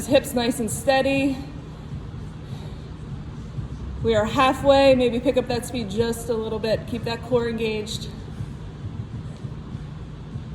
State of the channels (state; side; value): identical; both; correlation 1.00